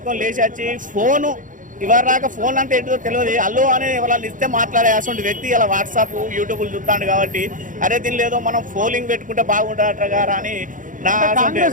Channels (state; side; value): late; left; 0.38 ms